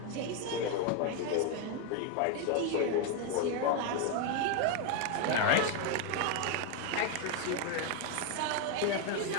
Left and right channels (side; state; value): both; different; correlation 0.01